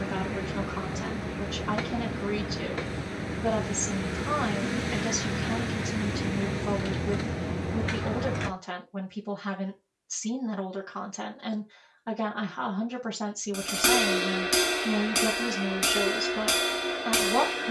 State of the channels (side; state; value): both; identical; correlation 1.00